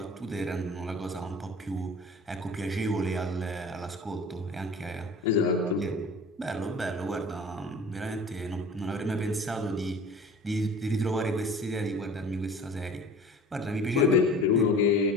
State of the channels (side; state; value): both; normal; correlation 0.42